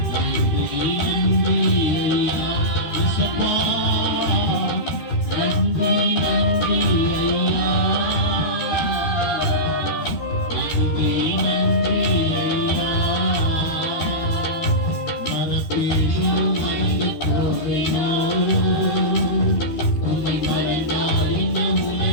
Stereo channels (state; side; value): late; right; 13 ms